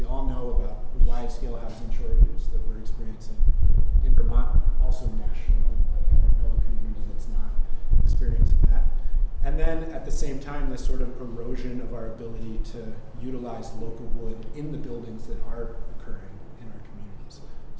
all know about the wide-scale housing shortages that we're experiencing in Vermont, also nationally. Like, I don't know a community that's not experiencing that. And then at the same time, this sort of erosion of our ability to utilize local wood in the buildings that are occurring in our communities.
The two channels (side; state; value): both; identical; correlation 1.00